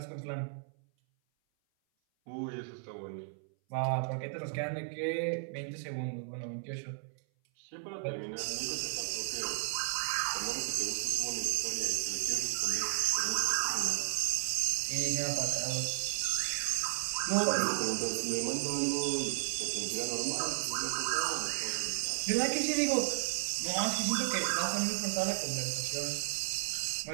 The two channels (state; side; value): silent; left; 55 dB below the other